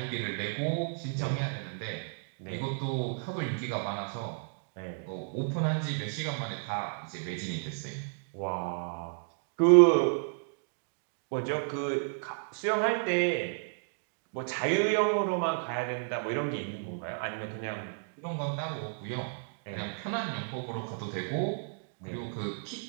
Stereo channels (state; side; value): silent; left; digital silence